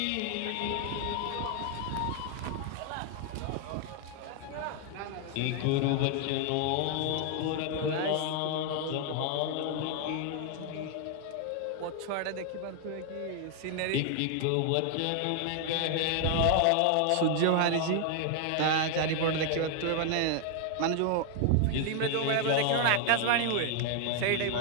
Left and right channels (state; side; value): different; both; correlation 0.00